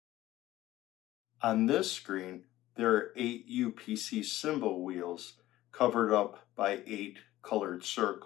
On this screen, there are 8 UPC symbol wheels covered up by 8 colored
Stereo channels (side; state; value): right; quieter; 15.6 dB